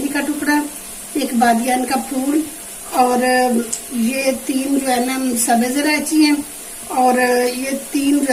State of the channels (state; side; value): identical; both; correlation 1.00